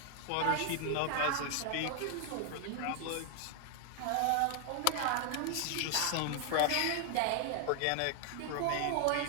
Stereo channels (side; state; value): both; different; correlation 0.00